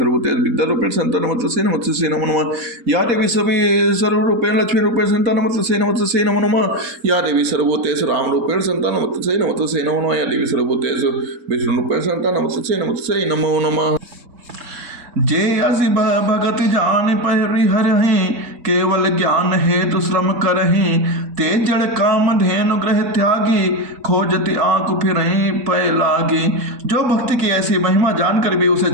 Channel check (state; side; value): late; left; 4.1 ms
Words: विद्यारूपेण संस्थिता नमस्तस्यै नमस्तस्यै नमो नमः। या देवी सभी सर्वरूपेण लक्ष्मी रूपेण संस्थिता नमस्तस्यै नमस्तस्यै नमो नमः। या देवी सर्वभूतेषु राम रूपेण संस्थिता नमस्तस्यै नमस्तस्यै नमो नमः। या देवी सर्वभूतेषु विष्णु रूपेण संस्थिता नमस्तस्यै नमस्तस्यै नमो नमः। जे असी भगत जान परिहरहि केवल ज्ञान हेतु श्रम करहि ते जड़ काम धेनु ग्रह त्यागी खोजति आंख फिरहि पय लागी। जो भक्ति की ऐसी महिमा जानकर भी उसे